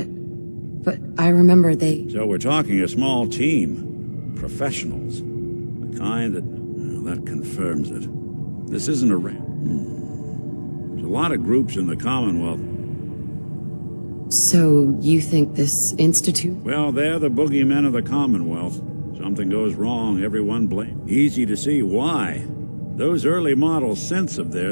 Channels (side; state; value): both; inverted; correlation -1.00